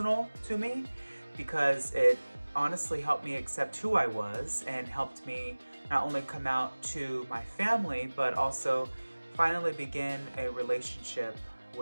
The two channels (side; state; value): both; inverted; correlation -1.00